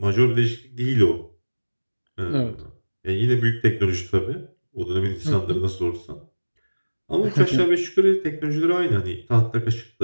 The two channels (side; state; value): both; inverted; correlation -1.00